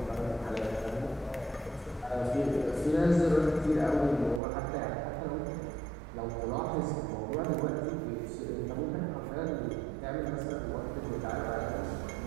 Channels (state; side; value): drops out; left; at 4.4 s